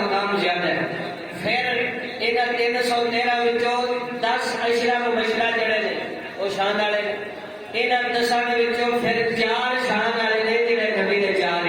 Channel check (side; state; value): both; identical; correlation 1.00